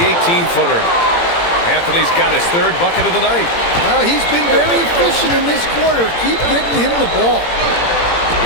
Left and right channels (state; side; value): late; right; 17 ms